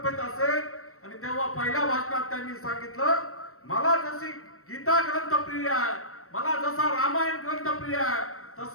असेल. आणि तेव्हा पहिल्या भाषणात त्यांनी सांगितलं, मला जशी गीता ग्रंथ प्रिय आहे, मला जसा रामायण ग्रंथ प्रिय आहे,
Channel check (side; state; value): right; late; 0.63 ms